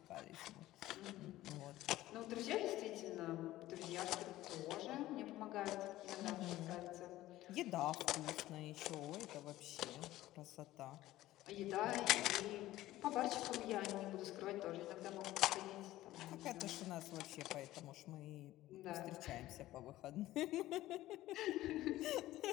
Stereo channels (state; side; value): quieter; right; 15.7 dB